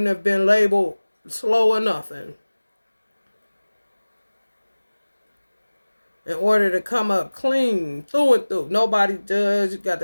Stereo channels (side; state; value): both; inverted; correlation -1.00